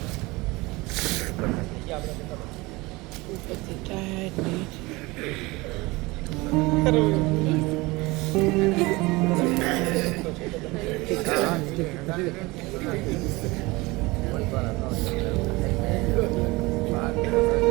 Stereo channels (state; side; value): quieter; left; 22.8 dB